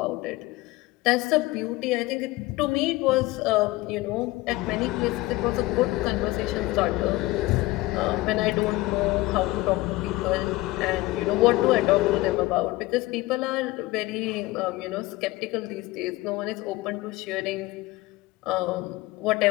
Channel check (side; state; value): right; quieter; 19.4 dB